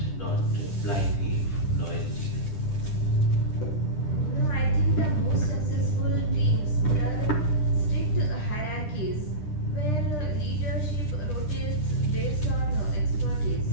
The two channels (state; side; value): late; right; 10 ms